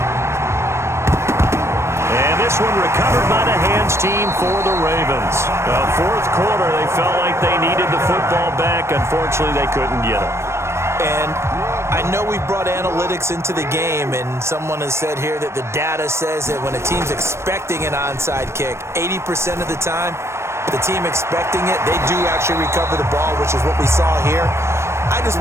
And this one recovered by the hands team for the Ravens. 4th quarter, they felt like they needed the football back. Unfortunately, they couldn't get it. And I know we brought analytics into the game, and someone has said here that the data says that when a team's expecting an onside kick, 80% of the time, the team expecting it, they do actually recover the ball, which is what we saw here. I just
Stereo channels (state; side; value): late; left; 0.13 ms